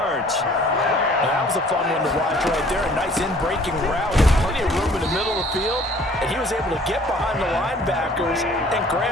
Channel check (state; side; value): normal; both; correlation 0.54